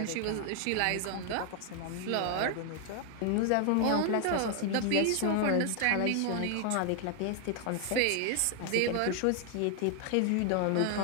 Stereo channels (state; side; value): different; both; correlation 0.00